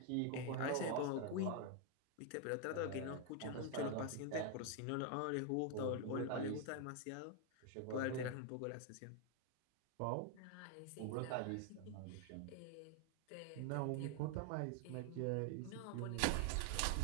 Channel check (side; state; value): both; different; correlation 0.00